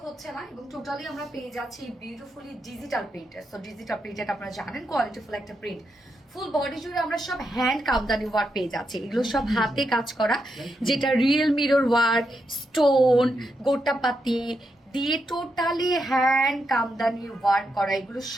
হচ্ছে না। এবং টোটালি আমরা পেয়ে যাচ্ছি বিউটিফুলি ডিজিটাল প্রিন্টের। সো ডিজিটাল প্রিন্টেড আপনারা জানেন কোয়ালিটিফুল একটা প্রিন্ট। ফুল বডি জুড়ে আমরা সব হ্যান্ড কামদানি ওয়ার্ক পেয়ে যাচ্ছি। এগুলো সব হাতে কাজ করা, যেটা রিয়েল মিরর ওয়ার্ক, স্টোন, গোটাপাতি দিয়ে টোটালি হ্যান্ড কামদানি ওয়ার্ক করা, এগুলো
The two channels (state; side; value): normal; both; correlation 0.83